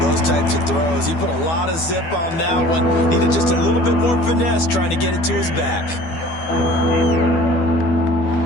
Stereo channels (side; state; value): right; late; 12 ms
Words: types of throws. He put a lot of zip on that one. Needed just a little bit more finesse trying to get it to his back.